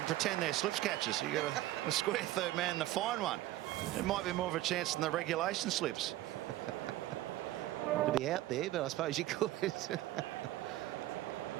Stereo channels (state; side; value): quieter; left; 15.7 dB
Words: Pretend they're slips catchers. You got a square third man and a fine one. It might be more of a chance than the regulation slips. To be out there, but I suppose you could.